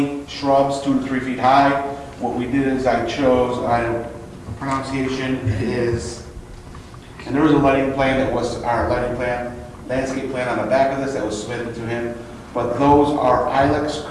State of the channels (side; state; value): both; identical; correlation 1.00